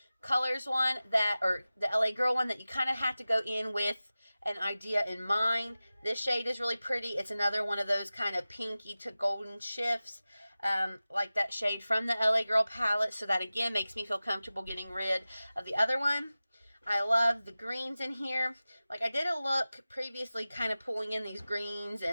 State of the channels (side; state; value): both; inverted; correlation -0.96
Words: Colors one that, or the LA Girl one, that you kind of have to go in with an idea in mind. This shade is really pretty. It's another one of those kind of pinky to golden shifts, like that shade from the LA Girl palette. So that, again, makes me feel comfortable getting rid of the other one. I love the greens in here. Like, I did a look previously kind of pulling in these greens